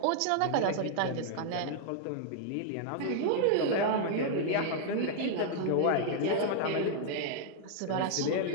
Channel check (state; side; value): different; both; correlation -0.01